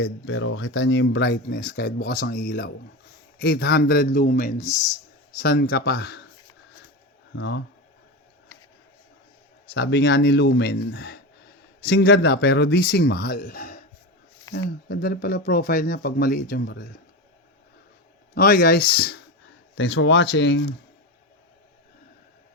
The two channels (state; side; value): normal; both; correlation 0.20